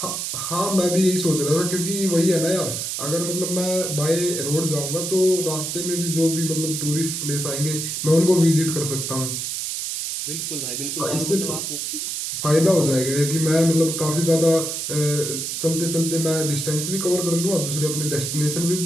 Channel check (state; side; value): noise; right; hiss, 3 dB below the sound